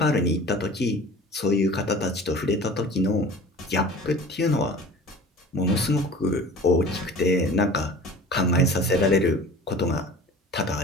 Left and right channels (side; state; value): both; normal; correlation 0.42